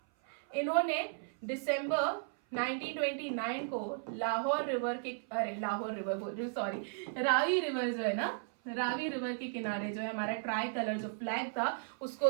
इन्होंने दिसंबर 1929 को लाहौर रिवर के, लाहौर रिवर बोल रही हूँ, सॉरी, रावी रिवर जो है ना, रावी रिवर के किनारे जो है हमारा ट्राई कलर जो फ्लैग था उसको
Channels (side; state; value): left; silent; 54 dB below the other